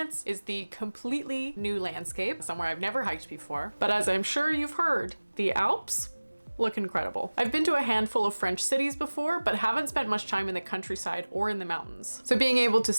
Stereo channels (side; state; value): both; inverted; correlation -1.00